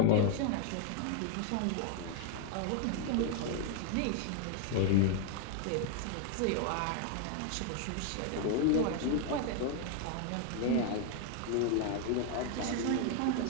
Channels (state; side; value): different; both; correlation 0.00